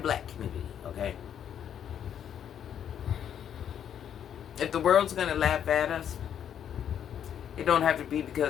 community, okay? If the world's going to laugh at us, it don't have to be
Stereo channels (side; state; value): right; quieter; 9.2 dB